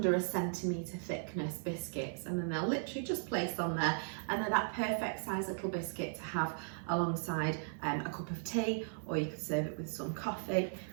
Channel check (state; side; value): silent; left; 53 dB below the other